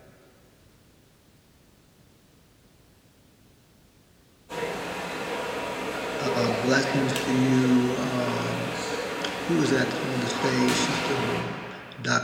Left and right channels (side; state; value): both; identical; correlation 1.00